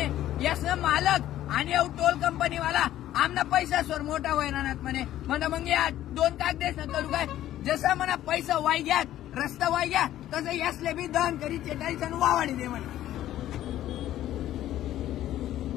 यासनं मालक आणि टोल कंपनीवाला आमना पैसा सोर मोठा होणार म्हणे मग या 2 कागदेसनं करू काय, जसा म्हणा पैसा वाय घ्या रस्ता वाय घ्या तसं यासले बी दहन करी चेटाळीस आणि वावाडी दे म्हणे।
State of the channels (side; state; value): right; quieter; 13.1 dB